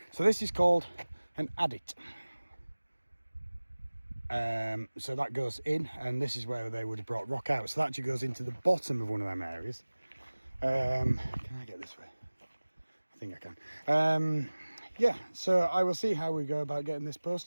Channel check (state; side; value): inverted; both; correlation -1.00